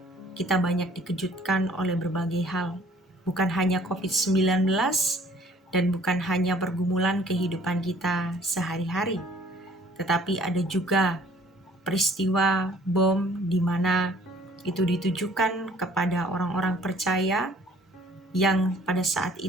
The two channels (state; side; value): normal; both; correlation 0.56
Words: kita banyak dikejutkan oleh berbagai hal. Bukan hanya COVID-19 dan bukan hanya pergumulan kehidupan kita sehari-hari. Tetapi ada juga peristiwa bom di mana itu ditujukan kepada orang-orang percaya yang pada saat